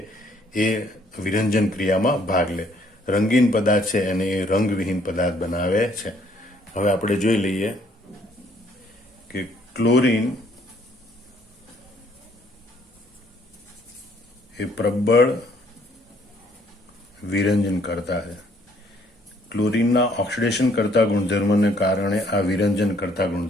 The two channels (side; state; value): both; normal; correlation 0.64